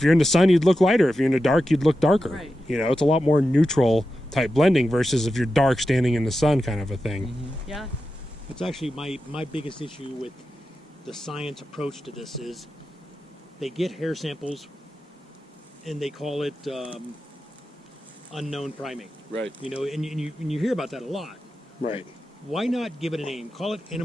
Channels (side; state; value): both; normal; correlation 0.91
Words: you're in the sun, you'd look lighter. If you're in the dark, you'd look darker. Right. It's a lot more neutral type blending versus if you're dark standing in the sun kind of a thing. Mm-hmm. Yeah. That's actually my biggest issue with the science approach to this is they get hair samples and they call it unknown primate. Right. And you hear about that a lot. Right. Why not give it a name? Call it